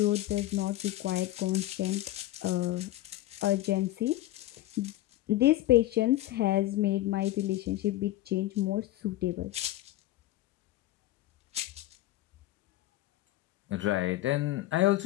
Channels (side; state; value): right; quieter; 15.5 dB